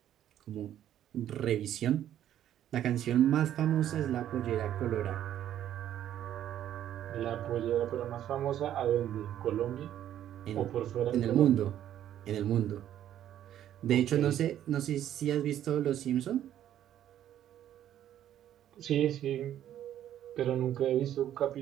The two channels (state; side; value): quieter; left; 11.3 dB